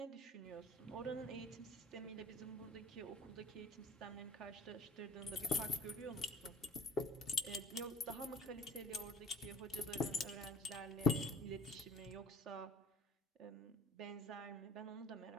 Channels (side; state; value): both; normal; correlation 0.46